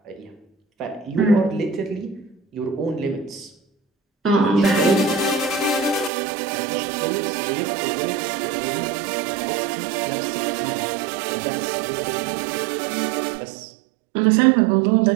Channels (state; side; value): drops out; left; at 6.1 s